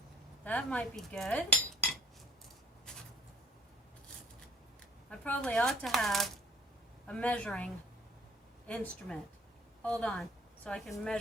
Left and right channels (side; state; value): both; normal; correlation 0.55